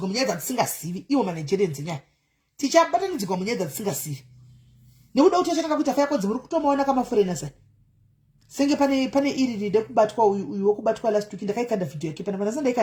munyaya dzatisingazivi. Iwo manigerians nyaya tichabatanidzirwa munyaya dzatisingazivi nekuda kuti achakanga kuti afa yakodzi muri kutomaona kamaforeigners aya senge pane iri ride kubatwa uyu wokubatwa last week ndakaikanda video yake pana vanasa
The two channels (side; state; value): both; identical; correlation 1.00